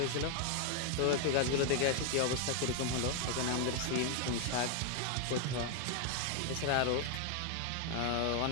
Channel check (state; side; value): different; both; correlation 0.01